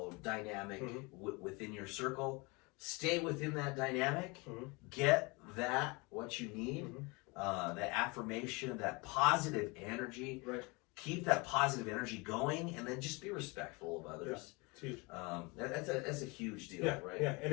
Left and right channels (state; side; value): quieter; right; 27.4 dB